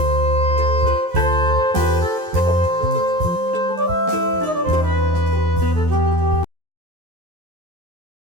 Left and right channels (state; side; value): late; left; 11 ms